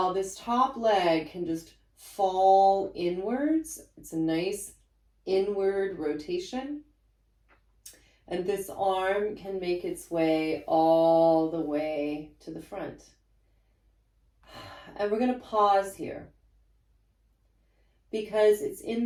this top leg can just fall inwards. It's a nice inward rotation. And this arm can make its way all the way to the front. And we're going to pause here, because it's in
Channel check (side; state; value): both; identical; correlation 1.00